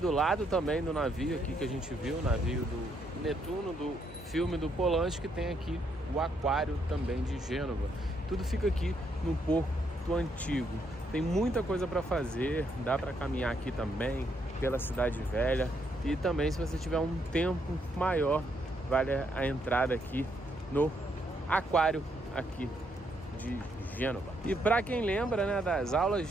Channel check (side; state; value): both; normal; correlation 0.75